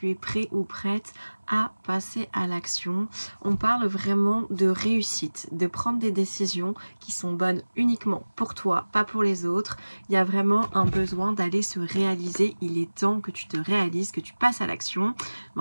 es prêt ou prête à passer à l'action. On parle vraiment de réussite, de prendre des décisions qui sont bonnes uniquement pour toi, pas pour les autres. Il y a vraiment un besoin d'aller se réaliser. Il est temps que tu te réalises, que tu passes à l'action.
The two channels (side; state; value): both; inverted; correlation -1.00